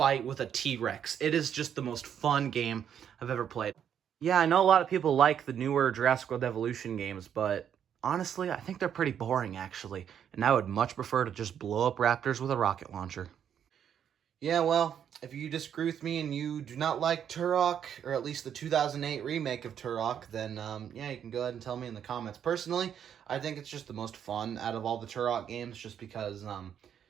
with a T-Rex. It is just the most fun game I've ever played. Yeah, I know a lot of people like the newer Jurassic World Evolution games, but honestly, I think they're pretty boring, actually. And I would much prefer to just blow up raptors with a rocket launcher. Yeah, well, if you disagree with me and you do not like Turok, or at least the 2008 remake of Turok, then, yeah, you can go ahead and tell me in the comments. Personally, I think it's just the most fun out of all the Turok games, just because,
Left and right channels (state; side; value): quieter; left; 8.8 dB